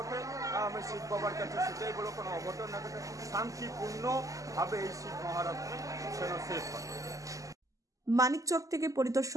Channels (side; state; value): left; late; 0.16 ms